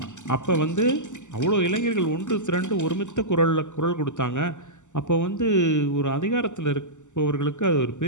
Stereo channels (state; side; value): late; right; 0.84 ms